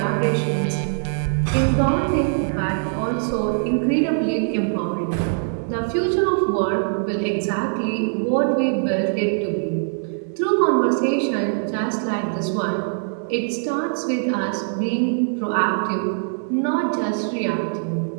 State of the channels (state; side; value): silent; left; digital silence